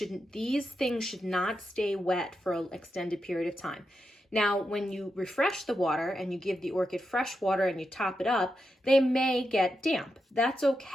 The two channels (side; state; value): both; normal; correlation 0.87